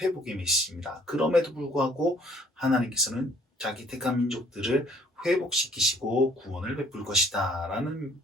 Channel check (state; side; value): normal; both; correlation 0.59